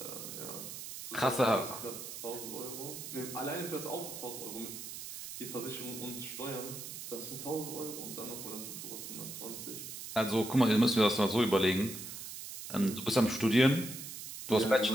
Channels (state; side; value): noise; right; hiss, 9 dB below the sound